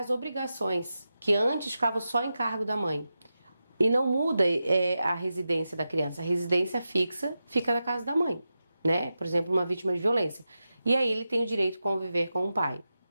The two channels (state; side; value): inverted; both; correlation -0.91